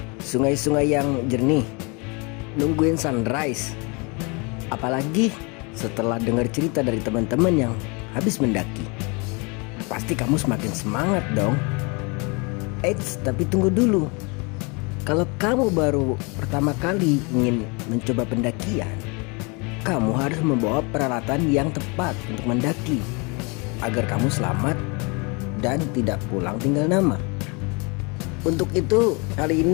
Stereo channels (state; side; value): quieter; right; 30.4 dB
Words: sungai-sungai yang jernih, nungguin sunrise. Apalagi setelah dengar cerita dari teman-teman yang habis mendaki. Pasti kamu semakin semangat dong. Eits, tapi tunggu dulu. Kalau kamu baru pertama kali ingin mencoba pendakian, kamu harus membawa peralatan yang tepat untuk mendaki agar kamu selamat dan tidak pulang tinggal nama. Untuk itu, kali